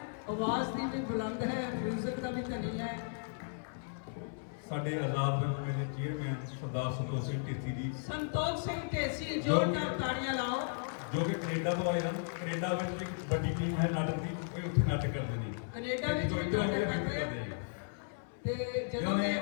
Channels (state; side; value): silent; right; 54 dB below the other